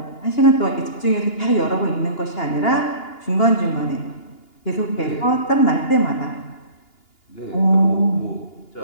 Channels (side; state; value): right; late; 2.8 ms